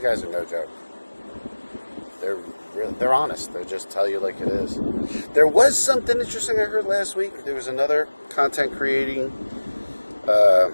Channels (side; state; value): both; inverted; correlation -1.00